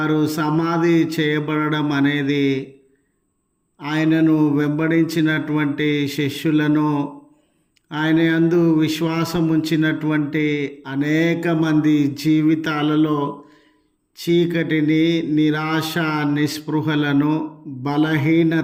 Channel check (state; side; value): identical; both; correlation 1.00